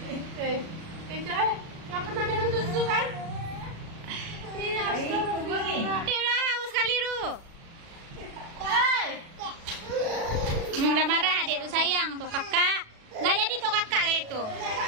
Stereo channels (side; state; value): left; late; 36 ms